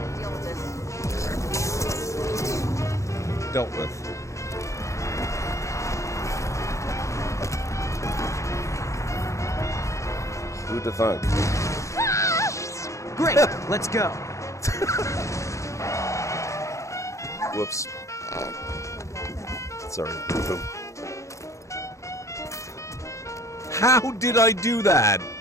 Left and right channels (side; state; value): right; late; 0.15 ms